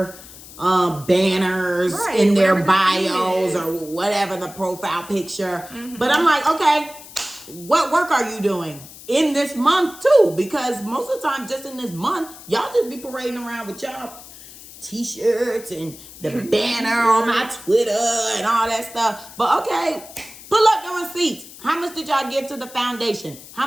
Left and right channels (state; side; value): noise; left; hiss, 17 dB below the sound